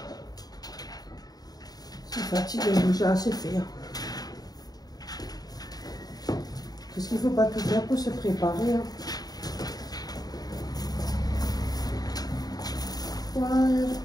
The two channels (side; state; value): right; late; 0.19 ms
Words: ça fatigue, j'ai assez fait. Qu'est-ce qu'il faut pas tout faire pour se préparer. Hein. Ouais.